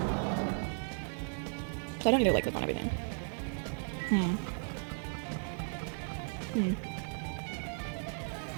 So I don't need to like click on everything.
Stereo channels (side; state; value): left; silent; 54 dB below the other